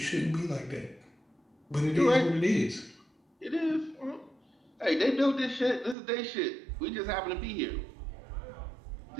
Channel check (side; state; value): left; drops out; at 6.0 s